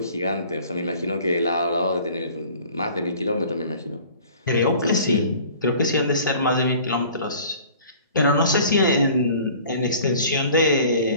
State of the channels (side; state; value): both; inverted; correlation -0.48